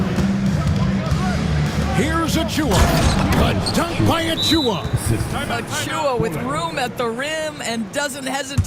Here's Achua. A dunk by Achua. Achua with room at the rim and doesn't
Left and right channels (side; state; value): both; identical; correlation 1.00